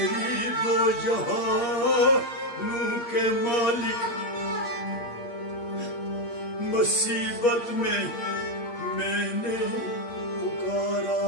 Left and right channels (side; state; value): right; late; 8.6 ms